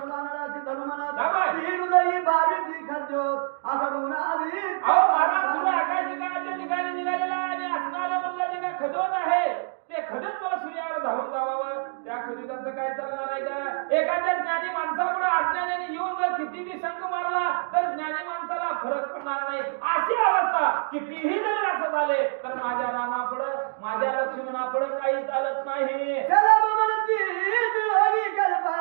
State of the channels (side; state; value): left; silent; digital silence